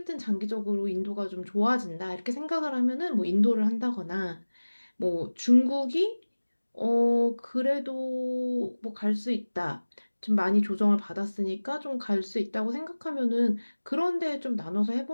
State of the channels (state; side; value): inverted; both; correlation -1.00